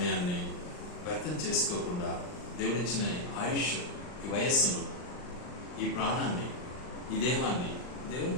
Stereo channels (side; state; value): right; late; 39 ms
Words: వ్యర్థం చేసుకోకుండా, దేవుడిచ్చిన ఆయుష్, ఈ వయస్సును, ఈ ప్రాణాన్ని, ఈ దేహాన్ని